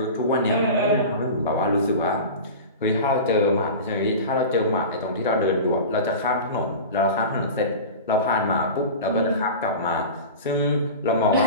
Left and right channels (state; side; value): inverted; both; correlation -0.31